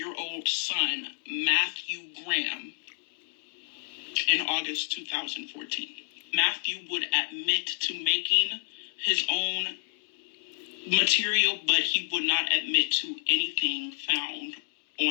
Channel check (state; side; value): silent; right; 58 dB below the other